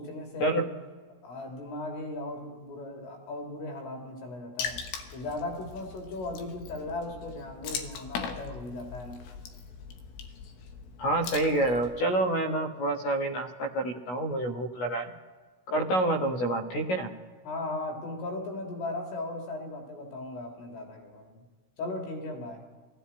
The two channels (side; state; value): right; late; 16 ms